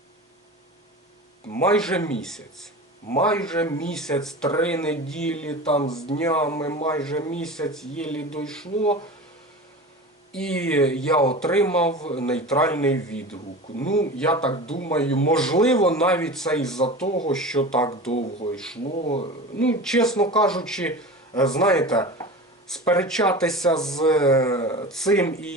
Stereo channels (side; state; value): both; normal; correlation 0.32